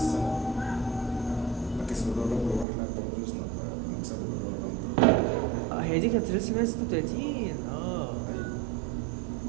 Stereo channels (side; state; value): left; drops out; at 2.7 s